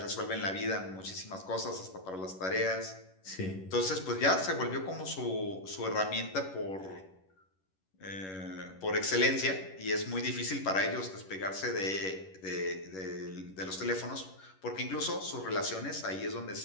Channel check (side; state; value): right; late; 11 ms